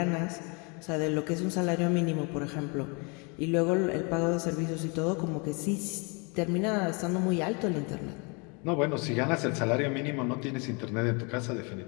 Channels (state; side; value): quieter; right; 32.2 dB